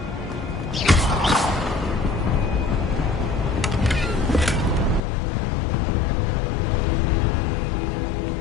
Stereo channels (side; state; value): right; drops out; at 5.0 s